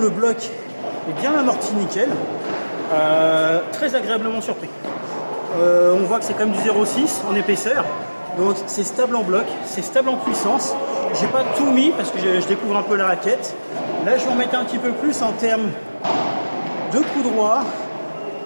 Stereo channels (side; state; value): both; inverted; correlation -1.00